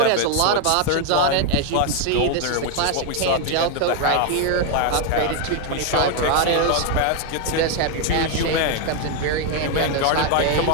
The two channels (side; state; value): both; different; correlation 0.01